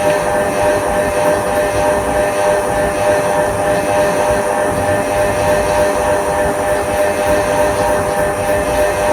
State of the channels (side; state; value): both; identical; correlation 1.00